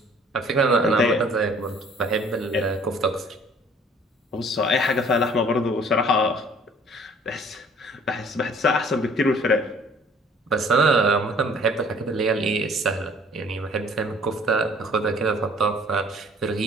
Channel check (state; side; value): normal; both; correlation 0.54